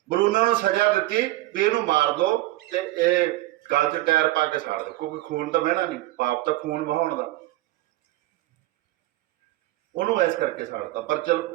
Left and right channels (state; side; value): quieter; left; 17.5 dB